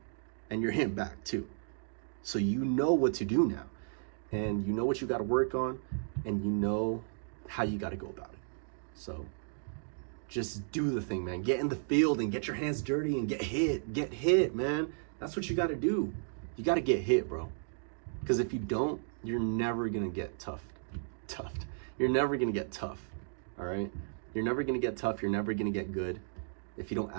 and you're hitting back too. So you know what to do now, and you know what you got to work on, and you know how you got to go about it. So just do the thing, man. Get in the field and get your hands dirty and get hit. Get hit, man. That's what you got to do. You got to get hit, bro. Because if you don't, you're never going to get toughed. You're never going to get tough, all right? You're never going to get tough. You're never going to get good if you don't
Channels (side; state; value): left; silent; digital silence